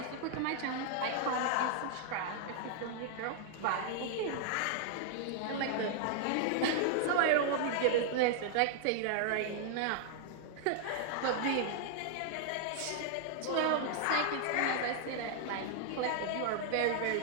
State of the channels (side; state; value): both; different; correlation 0.00